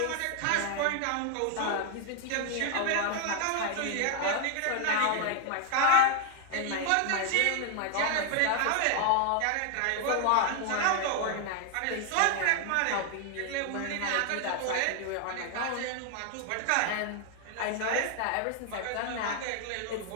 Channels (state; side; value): different; both; correlation 0.00